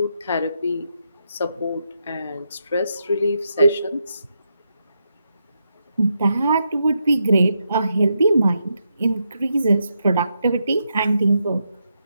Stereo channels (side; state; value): both; inverted; correlation -0.82